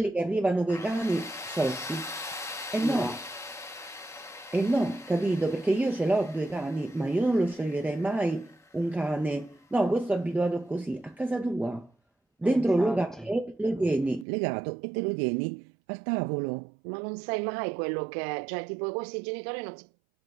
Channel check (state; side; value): drops out; left; at 14.2 s